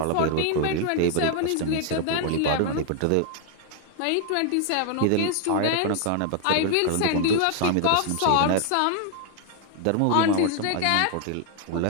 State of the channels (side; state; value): both; different; correlation 0.00